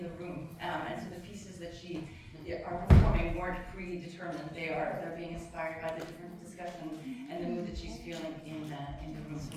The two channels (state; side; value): identical; both; correlation 1.00